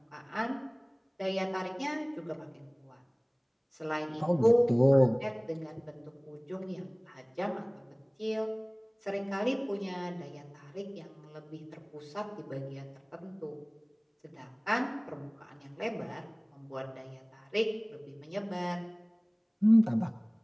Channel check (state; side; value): identical; both; correlation 1.00